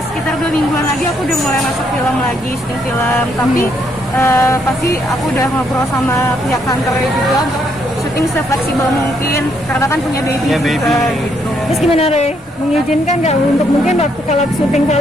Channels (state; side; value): normal; both; correlation 0.73